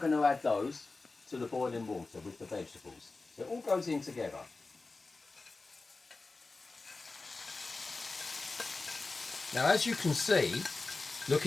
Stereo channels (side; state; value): right; quieter; 3.6 dB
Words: to add those to the boiling water with the vegetables. So it all goes in together. Now, as you can see,